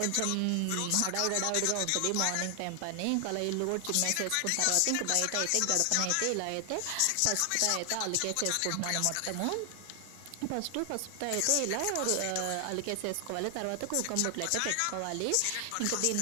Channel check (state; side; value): different; both; correlation 0.00